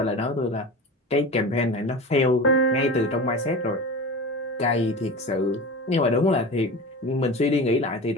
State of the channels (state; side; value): normal; both; correlation 0.30